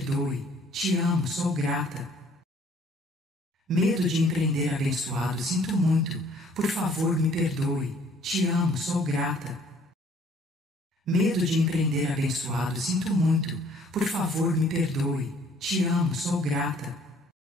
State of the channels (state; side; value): normal; both; correlation 0.58